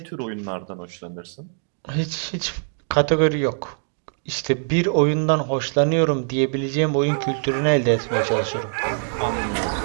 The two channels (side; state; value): left; silent; 63 dB below the other